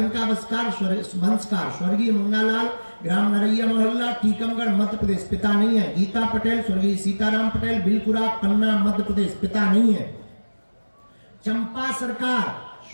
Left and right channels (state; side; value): inverted; both; correlation -1.00